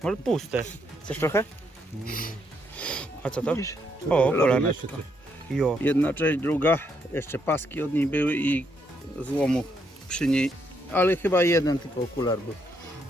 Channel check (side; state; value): both; normal; correlation 0.75